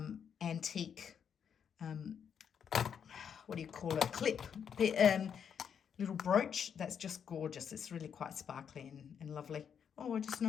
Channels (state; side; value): quieter; right; 7.7 dB